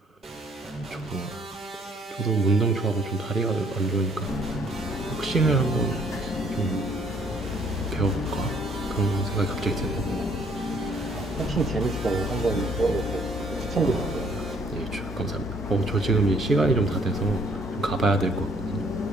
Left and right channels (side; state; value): both; normal; correlation 0.63